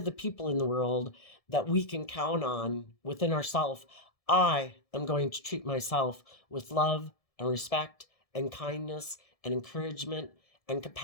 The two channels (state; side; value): late; right; 1.7 ms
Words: the people in the world that we can count on within ourselves. I am going to treat myself with love and respect and kindness and encouragement and